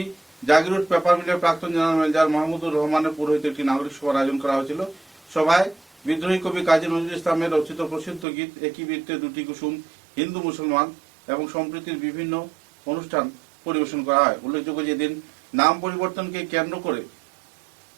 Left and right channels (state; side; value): drops out; left; at 8.2 s